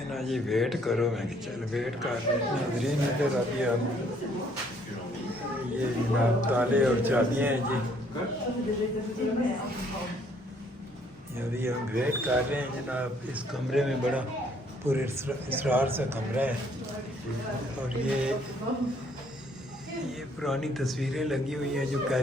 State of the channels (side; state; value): both; normal; correlation 0.64